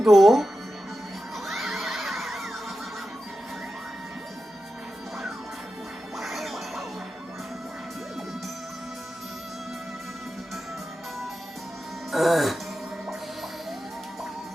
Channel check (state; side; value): normal; both; correlation 0.91